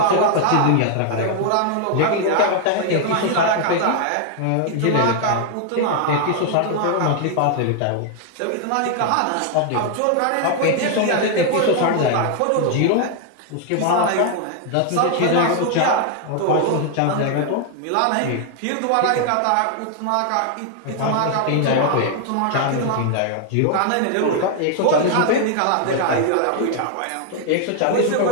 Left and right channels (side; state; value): both; different; correlation 0.00